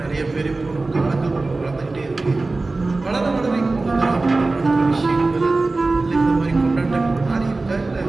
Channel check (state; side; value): quieter; left; 3.4 dB